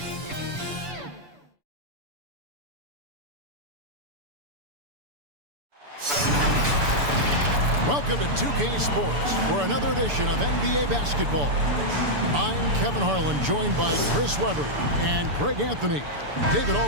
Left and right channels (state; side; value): late; left; 6.9 ms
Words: Welcome to 2K Sports for another edition of NBA basketball. I'm Kevin Harlan, joined by Chris Webber and Greg Anthony. David